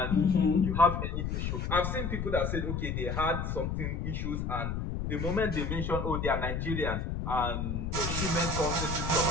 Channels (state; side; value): noise; left; rumble, 2 dB below the sound